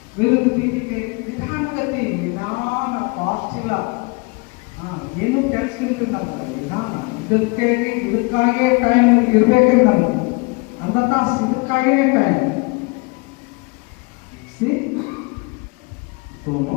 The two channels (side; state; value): right; quieter; 28.9 dB